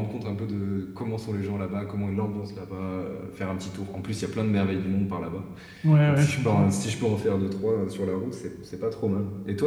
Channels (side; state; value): both; identical; correlation 1.00